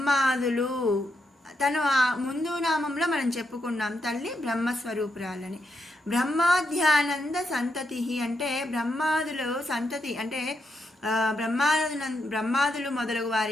తను ముందు నామంలో మనం చెప్పుకున్నాం తల్లి బ్రహ్మస్వరూపురాలని. బ్రహ్మాధ్యానంద సంతతి అంటే బ్రహ్మాదులు సంతతి అంటే బ్రహ్మాదులు మొదలగు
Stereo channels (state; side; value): normal; both; correlation 0.82